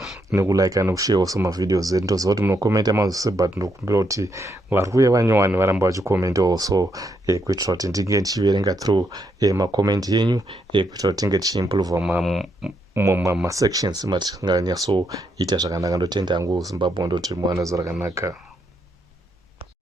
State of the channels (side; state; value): both; normal; correlation 0.78